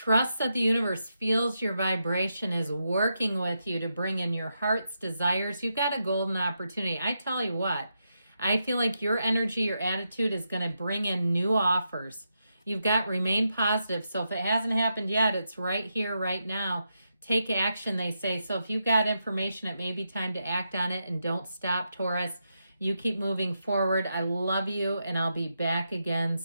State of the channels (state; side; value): inverted; both; correlation -0.85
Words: that the universe feels your vibration, is working with you to bring in your heart's desires. You've got a golden opportunity. I tell you what, I feel like your energy, your attitude is going to bring in new offers. You've got remain positive. So if it hasn't happened yet, it's right here, right now. Take action, they say. So if you've got information, it may be time to act on it, and don't stop, Taurus. You keep moving forward. I love you, and I'll be back again